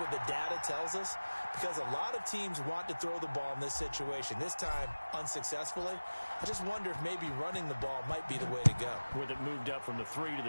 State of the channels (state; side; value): inverted; both; correlation -1.00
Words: the data tells us, because a lot of teams want to throw the ball in this situation. This time, unsuccessfully. I just wonder if maybe running the ball might be the way to go. With it moved up from the 3 to